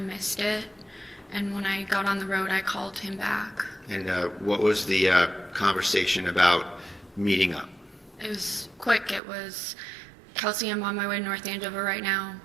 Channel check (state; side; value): drops out; left; at 9.2 s